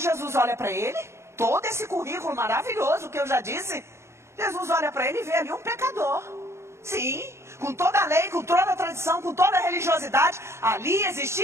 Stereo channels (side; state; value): left; late; 0.13 ms